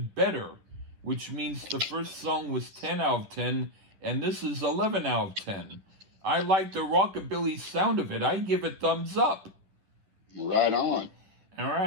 better, which means the first song was 10 out of 10, and this is 11 out of 10. I like the rockabilly sound of it. I give it thumbs up. Right on. All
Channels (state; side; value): late; left; 10 ms